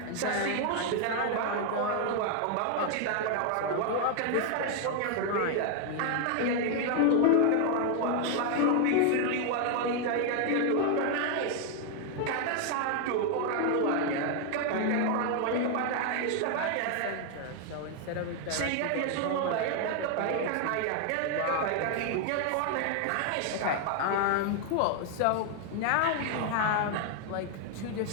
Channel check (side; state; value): both; different; correlation 0.00